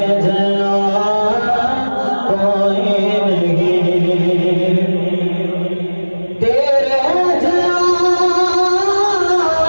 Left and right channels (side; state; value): both; inverted; correlation -1.00